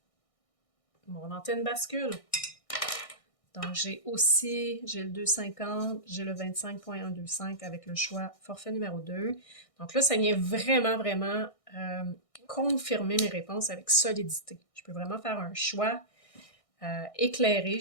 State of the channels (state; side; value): late; right; 1.6 ms